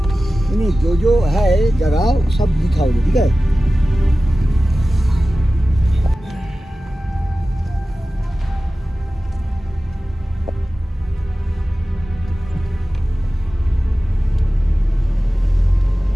नहीं जो जो है जगह सब दिखाओगे, ठीक है?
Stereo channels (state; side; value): normal; both; correlation 0.95